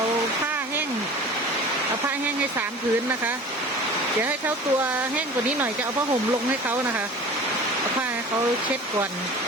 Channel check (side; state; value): both; normal; correlation 0.40